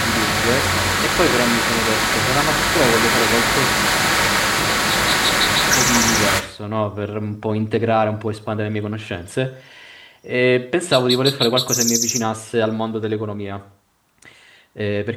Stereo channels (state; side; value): identical; both; correlation 1.00